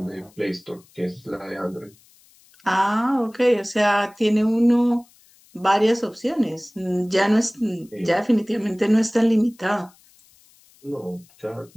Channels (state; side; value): noise; left; hiss, 30 dB below the sound